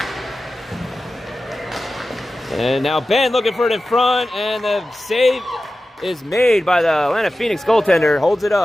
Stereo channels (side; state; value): both; normal; correlation 0.94